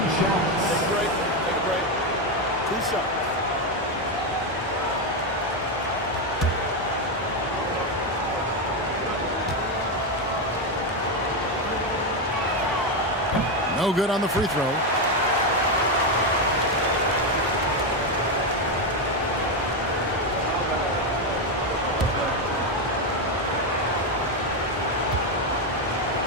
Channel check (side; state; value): both; normal; correlation 0.08